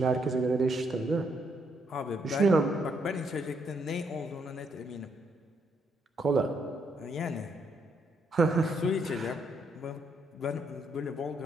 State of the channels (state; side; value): normal; both; correlation 0.74